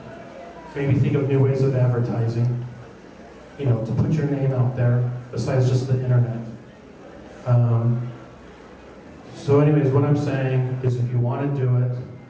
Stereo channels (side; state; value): both; identical; correlation 1.00